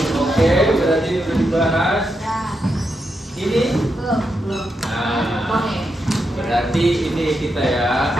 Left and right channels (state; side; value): normal; both; correlation 0.84